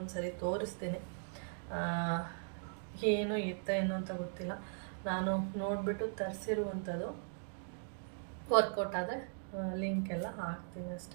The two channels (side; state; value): left; silent; digital silence